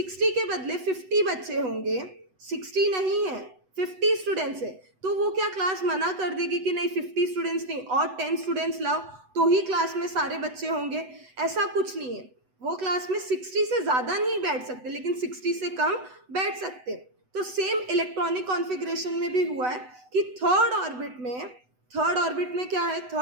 के बदले 50 बच्चे होंगे, 60 नहीं है 50 स्टूडेंट्स है, तो वो क्या क्लास मना कर देगी कि नहीं 50 स्टूडेंट्स नहीं और 10 स्टूडेंट्स लाओ तो ही क्लास में सारे बच्चे होंगे? ऐसा कुछ नहीं है। वो क्लास में 60 से ज़्यादा नहीं बैठ सकते, लेकिन 60 से कम बैठ सकते। तो सेम इलेक्ट्रॉनिक कॉन्फ़िगरेशन में भी हुआ है कि थर्ड ऑर्बिट में क्या है?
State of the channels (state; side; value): late; left; 8.0 ms